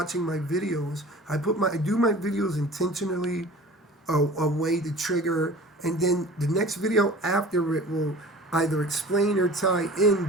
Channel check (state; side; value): normal; both; correlation 0.42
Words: my videos, I do my videos intentionally a way to trigger, and then the next video after it will either explain or tie in,